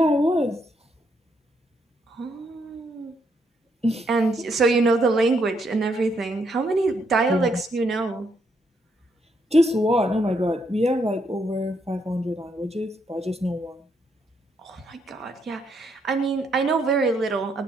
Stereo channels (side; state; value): both; normal; correlation 0.75